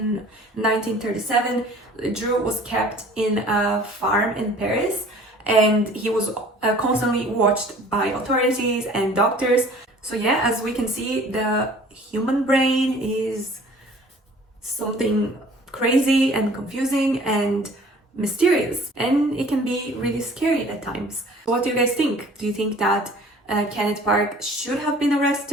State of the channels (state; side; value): normal; both; correlation 0.50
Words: 1937, Ledru was kept in a farm in Paris and he was constantly watched by authorities and doctors. So yeah, as we can see, the human brain is something crazy and confusing and mysterious, and it can be really scary at times. What do you guys think? Do you think that Kenneth Park should have been